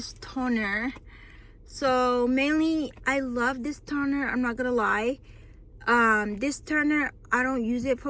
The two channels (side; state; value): both; identical; correlation 1.00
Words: toner. So mainly I love this toner, I'm not gonna lie. This toner, I don't use it